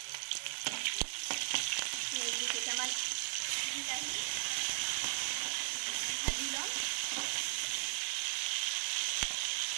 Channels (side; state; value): left; silent; 53 dB below the other